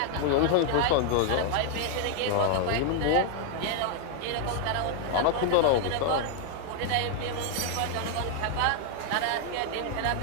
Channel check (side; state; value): both; different; correlation 0.00